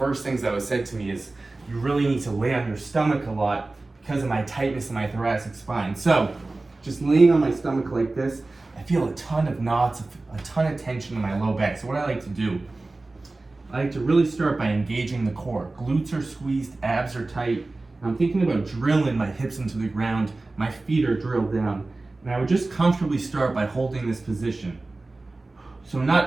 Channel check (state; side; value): quieter; left; 3.2 dB